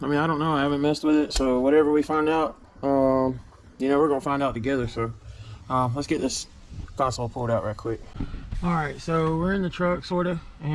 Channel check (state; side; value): identical; both; correlation 1.00